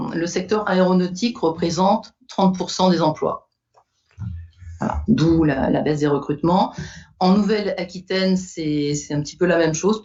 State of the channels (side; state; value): both; identical; correlation 1.00